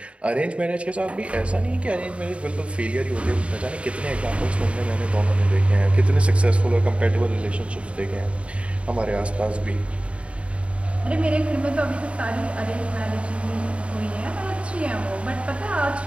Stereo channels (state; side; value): late; left; 0.061 ms